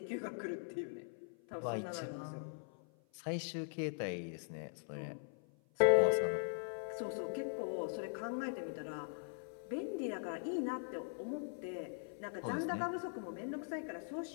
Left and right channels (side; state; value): right; silent; 50 dB below the other